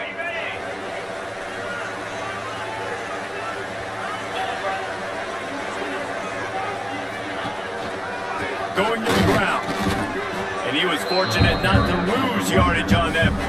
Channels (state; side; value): identical; both; correlation 1.00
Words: Going to the ground. And he was fortunate not to lose yardage on that